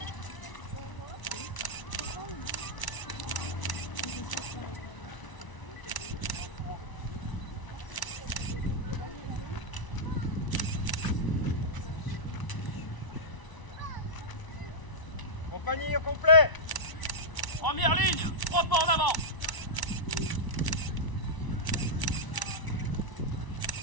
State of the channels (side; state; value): right; late; 1.0 ms